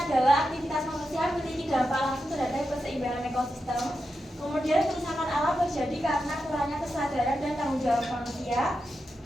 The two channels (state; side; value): normal; both; correlation 0.88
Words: aktivitas manusia memiliki dampak langsung terhadap keseimbangan ekosistem. Kemudian kerusakan alam terjadi karena kurangnya kesadaran dan tanggung jawab manusia,